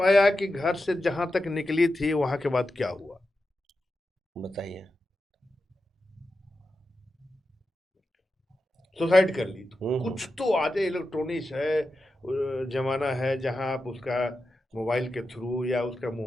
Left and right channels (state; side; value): normal; both; correlation 0.90